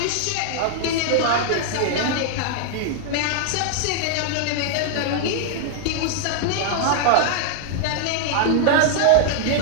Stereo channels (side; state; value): both; different; correlation 0.00